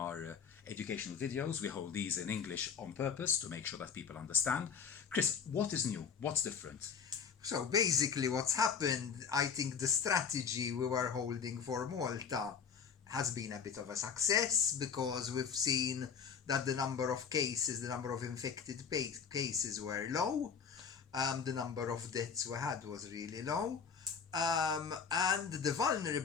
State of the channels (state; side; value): quieter; right; 6.5 dB